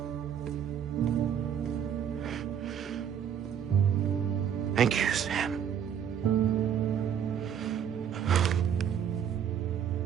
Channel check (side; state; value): left; quieter; 8.6 dB